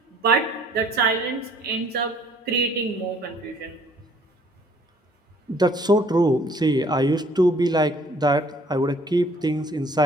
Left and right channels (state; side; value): normal; both; correlation 0.58